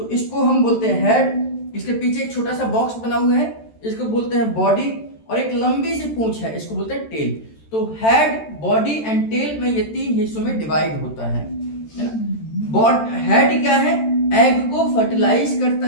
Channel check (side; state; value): right; late; 13 ms